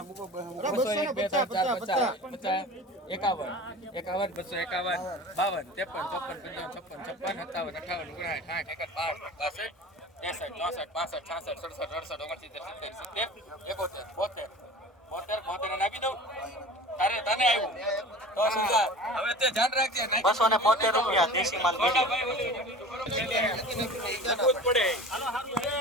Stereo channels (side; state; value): both; normal; correlation 0.38